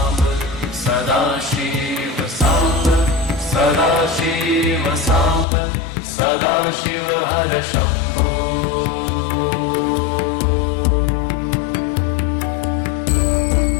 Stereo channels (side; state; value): right; drops out; at 5.5 s